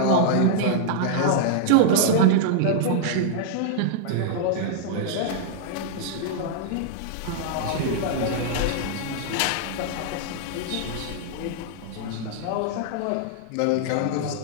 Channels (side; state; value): both; different; correlation -0.01